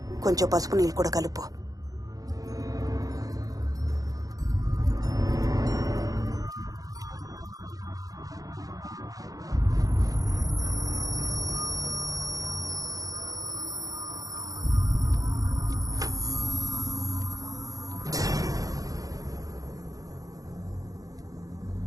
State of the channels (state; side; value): late; left; 0.17 ms